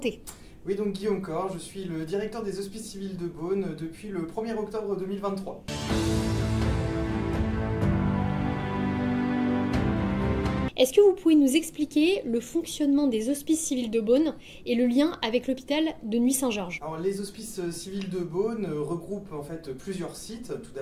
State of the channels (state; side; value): identical; both; correlation 1.00